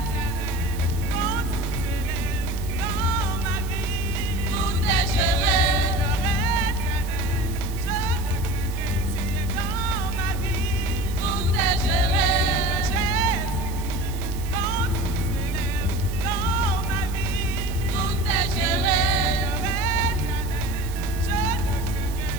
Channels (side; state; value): right; noise; hiss, 15 dB below the sound